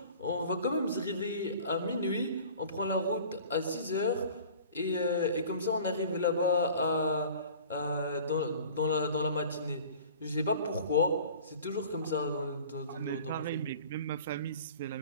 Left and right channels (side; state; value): both; inverted; correlation -0.45